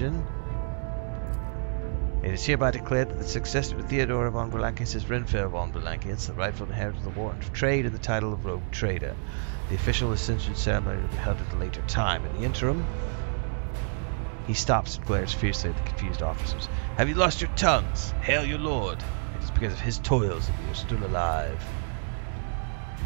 it is hereby declared that the successor to Theodora von Valankis is Renfail von Valankis, the rightful inheritor of the Warden of Trade and the title of Rogue Trader. The official ascension ceremony will be held at a later time. In the interim, he stops and glares fiercely at the confused officers. Have you lost your tongues? Hail your lord. It is because of his toils that we are still alive.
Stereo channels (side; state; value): left; silent; digital silence